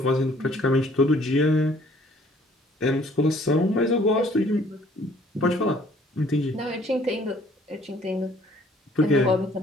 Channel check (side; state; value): both; normal; correlation 0.59